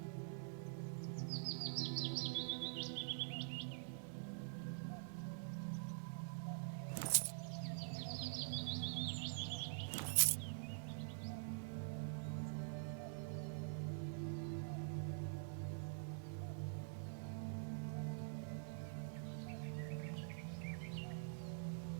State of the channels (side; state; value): left; silent; digital silence